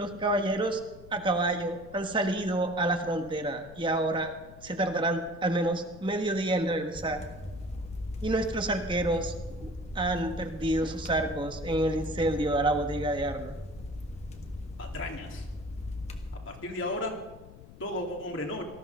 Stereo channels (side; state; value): left; noise; rumble, 18 dB below the sound